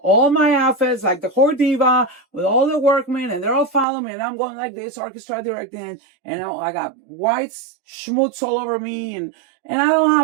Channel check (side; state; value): left; drops out; at 3.9 s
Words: all my outfits like the whore diva with all the workmen, and they're all following me, and I'm going like this, orchestra directing, and I got white schmutz all over me, and I don't